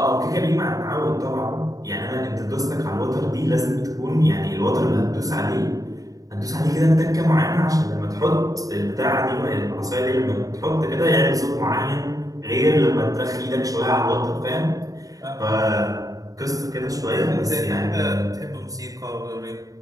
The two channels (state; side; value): late; left; 0.17 ms